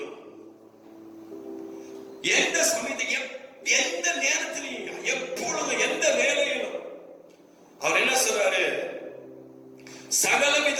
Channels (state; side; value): identical; both; correlation 1.00